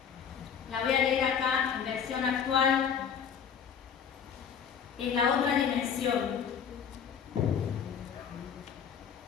leer acá en versión actual. Es la otra dimensión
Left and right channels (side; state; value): right; quieter; 7.5 dB